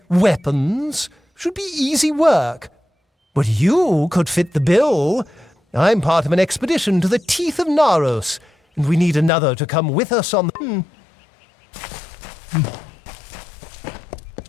weapons. Should be easy work. But you could fit the bill. I'm part of an expedition to the teeth of Naros, and we need another to come with us on the...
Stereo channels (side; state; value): right; drops out; at 9.3 s